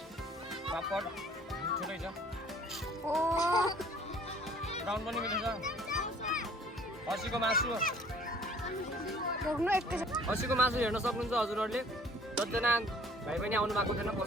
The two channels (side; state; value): both; normal; correlation 0.54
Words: पापड मिठो छ, ब्राउन पनि मिठो छ। खसीको मासु हेर्न सक्नुहुन्छ हजुरहरूले। जतिजना भाइ पनि आउनु भएको थिएन,